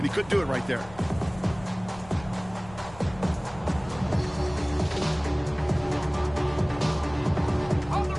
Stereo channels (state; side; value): noise; left; rumble, 18 dB below the sound